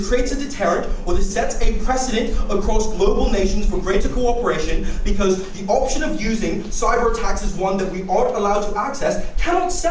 creates a deterrent or this sets a precedent across global nations for greater cooperation, because the option of using cyber attacks as one that we aren't allowed to access cannot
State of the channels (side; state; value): both; identical; correlation 1.00